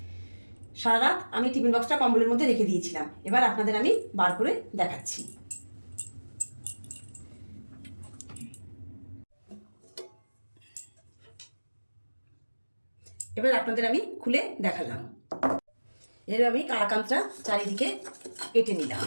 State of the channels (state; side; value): inverted; both; correlation -1.00